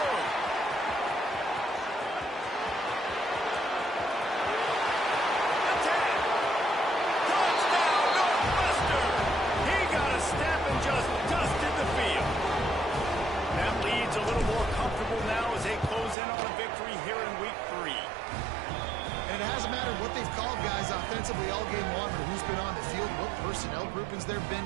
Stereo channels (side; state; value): left; drops out; at 16.2 s